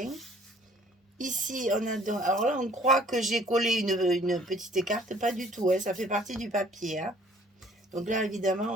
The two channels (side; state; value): both; normal; correlation 0.56